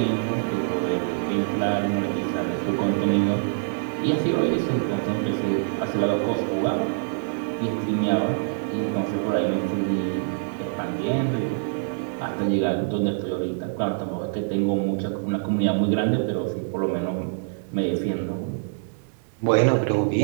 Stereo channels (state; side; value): silent; left; digital silence